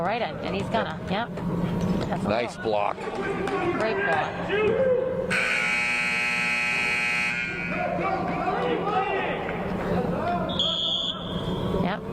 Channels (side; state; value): both; identical; correlation 1.00